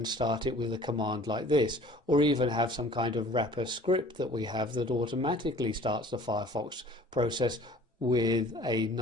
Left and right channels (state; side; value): normal; both; correlation 0.49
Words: start it with a command like this, or even have some kind of wrapper script that we have that automatically starts the Firefox process with a